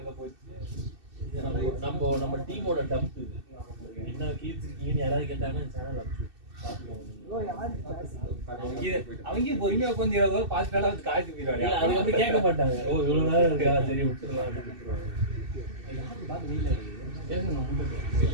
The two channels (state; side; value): late; left; 2.6 ms